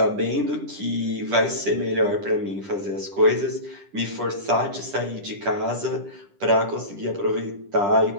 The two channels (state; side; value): late; left; 10 ms